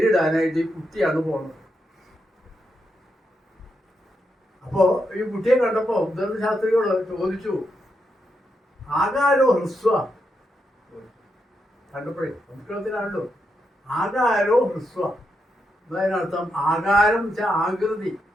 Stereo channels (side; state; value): both; normal; correlation 0.83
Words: ഈ കുട്ടിയാണ് പോണത്. അപ്പോ ഈ കുട്ടിയെ കണ്ടപ്പോ ഉദ്ദണ്ഡ ശാസ്ത്രികൾ ചോദിച്ചു, ആകാരോ ഹ്രസ്വ, കണ്ടപ്പോഴേ സംസ്കൃതത്തിലാണല്ലോ ആകാരോ ഹ്രസ്വ. അതിനർത്ഥം ആകാരം വെച്ചാൽ ആകൃതി,